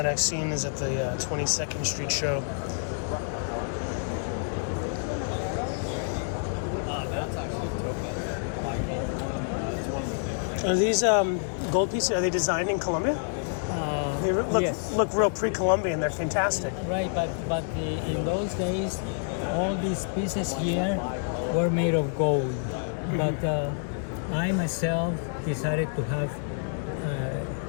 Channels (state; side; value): silent; right; digital silence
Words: I've seen is at the 22nd Street show. Are these gold pieces, are they designed in Colombia? They Yes. look real pre-Colombian. They're fantastic. Right, but in those days, all these pieces here were made of gold. But I myself decided to have